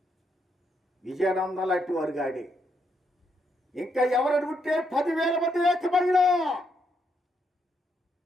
విజయానందం లాంటి వారు కానీ, ఇంకా ఎవరైనా ఉంటే 10,000 మంది ఏకమైనా,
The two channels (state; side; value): normal; both; correlation 0.77